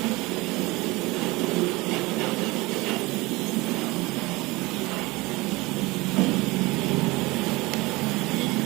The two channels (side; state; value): left; quieter; 22.3 dB